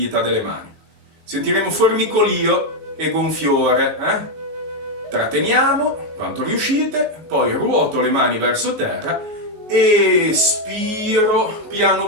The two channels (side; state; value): left; late; 19 ms